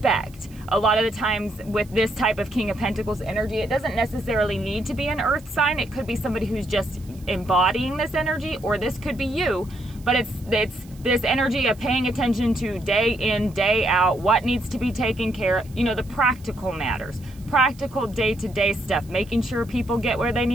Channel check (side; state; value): right; noise; hiss, 26 dB below the sound